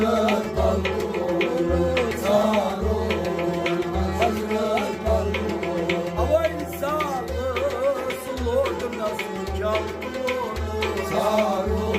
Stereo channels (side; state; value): both; identical; correlation 1.00